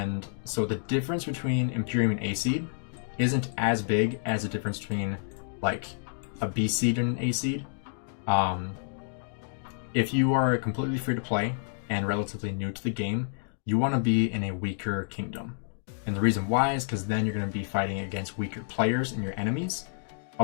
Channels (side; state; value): right; silent; digital silence